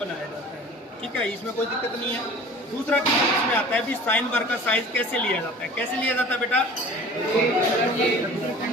जाता है, ठीक है, इसमें कोई दिक्कत नहीं है। दूसरा इसमें आता है भी साइन बार का साइज कैसे लिया जाता है। कैसे लिया जाता है बेटा,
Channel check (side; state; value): both; normal; correlation 0.43